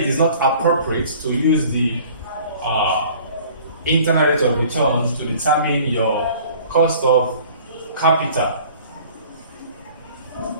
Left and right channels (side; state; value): both; inverted; correlation -0.50